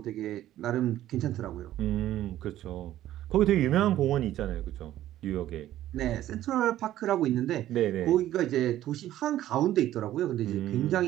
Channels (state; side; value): quieter; left; 13.3 dB